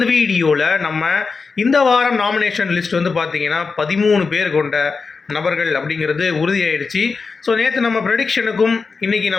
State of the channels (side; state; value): right; quieter; 4.7 dB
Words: வீடியோவில் நம்ம இந்த வாரம் நாமினேஷன் லிஸ்ட் வந்து பார்த்தீங்கன்னா 13 பேர் கொண்ட நபர்கள் அப்படிங்கிறது உறுதியாயிடுச்சு. ஸோ நேற்று நம்ம ப்ரெடிக்ஷனுக்கும் இன்றைக்கி